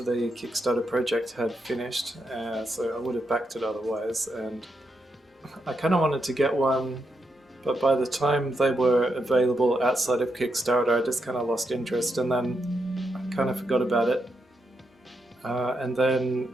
the Kickstarter project had finished, so I would have backed it otherwise, and I kind of wanted to get one, but by the time they were available outside of Kickstarter, I just kind of lost interest, and then I kind of forgot about it. And then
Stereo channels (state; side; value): normal; both; correlation 0.83